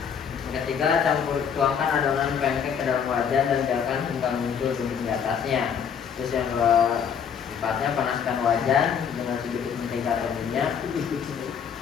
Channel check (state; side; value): quieter; right; 7.3 dB